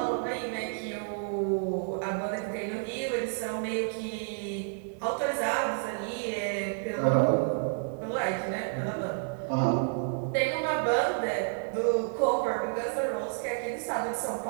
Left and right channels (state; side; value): silent; left; 58 dB below the other